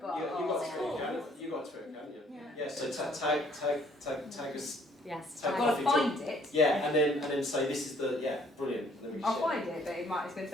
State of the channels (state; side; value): normal; both; correlation 0.62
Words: But you got to it, can't you? Yeah. So tag us. Yes. I've got to find it. Yeah, and then say this is the brilliant. I'll find it, but it's going to